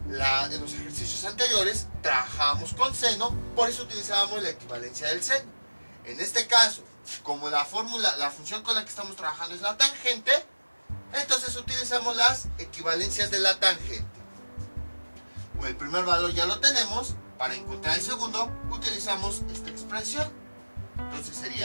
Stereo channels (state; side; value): inverted; both; correlation -1.00